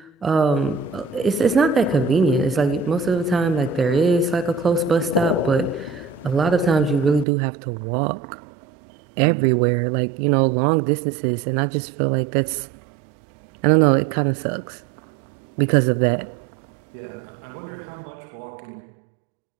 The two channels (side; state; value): left; drops out; at 7.2 s